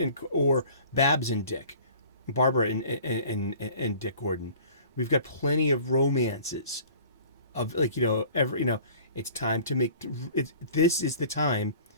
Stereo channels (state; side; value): inverted; both; correlation -0.47